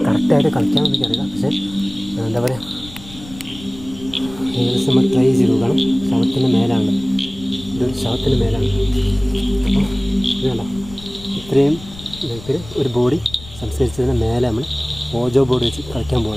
കറക്റ്റായിട്ട് കളിക്കാമെന്ന് എനിക്കറിയില്ല, പക്ഷേ എന്താ പറയുക, ഏകദേശം നമ്മൾ ട്രൈ ചെയ്ത് നോക്കണം. ശവത്തിൻ്റെ മേലാണ്, ഇതൊരു ശവത്തിൻ്റെ മേലാണ്. അപ്പോൾ ഇതല്ല, ഇത്രയും ഇതിൽ ഒരു ബോഡി സംസ്കരിച്ചതിന് മേലെ നമ്മൾ ഓജോ ബോർഡ് വെച്ച് കളിക്കാൻ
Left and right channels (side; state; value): left; noise; rumble, 17 dB below the sound